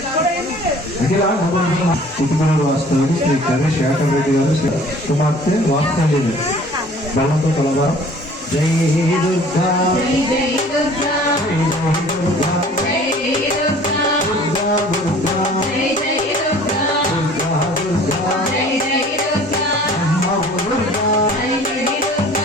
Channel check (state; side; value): normal; both; correlation 0.50